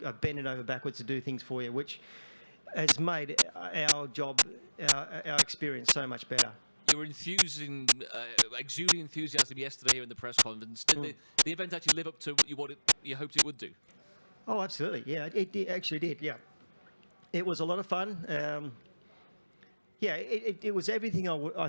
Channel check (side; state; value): both; inverted; correlation -1.00